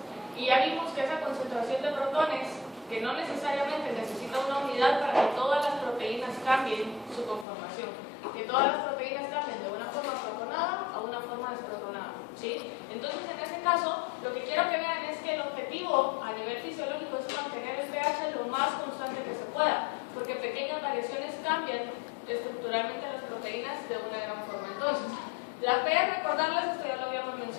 Y ya vimos que esa concentración de protones, que no necesariamente necesita una unidad para que todas las proteínas cambien su conformación, que todas las proteínas cambien de una forma protonada a una forma desprotonada, ¿sí? Entonces, en ese caso, lo que quiero que vean es que el objetivo a nivel fisiológico es mantener el pH lo más constante que se pueda, porque pequeñas variaciones cambian estructuralmente las proteínas de una gran forma. Entonces, La P, recordarles, esto ya lo habíamos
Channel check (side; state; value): right; drops out; at 7.5 s